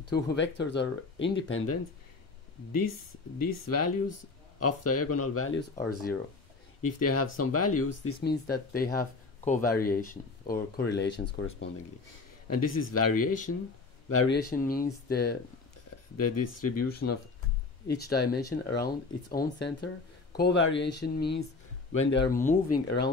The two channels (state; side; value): quieter; right; 4.0 dB